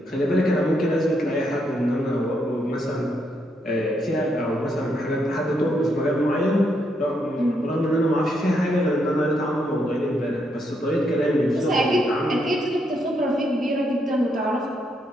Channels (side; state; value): both; normal; correlation 0.77